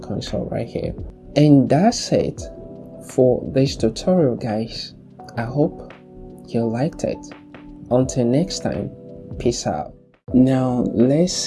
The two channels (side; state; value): both; identical; correlation 1.00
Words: right here. And that's it for this tutorial, guys. I hope you liked it. Until next time, peace out. Now let's